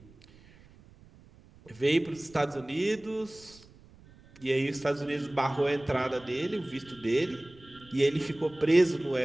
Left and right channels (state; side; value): noise; right; rumble, 24 dB below the sound